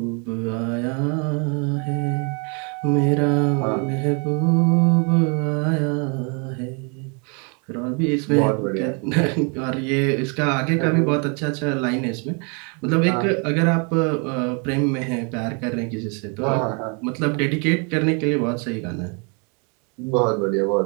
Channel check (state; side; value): quieter; left; 35.7 dB